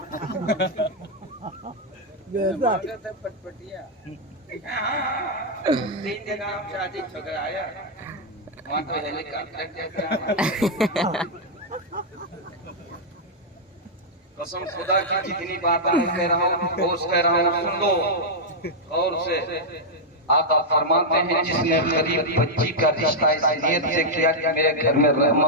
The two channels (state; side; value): normal; both; correlation -0.04